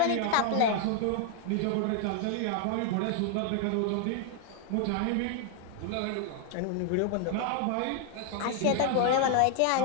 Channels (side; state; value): both; different; correlation 0.00